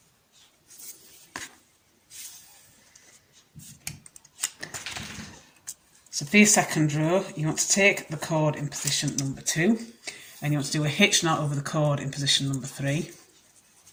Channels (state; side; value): identical; both; correlation 1.00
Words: So for your second row, you want to take the chord in position number 2, and you want to do a hitch knot over the chord in position number 3.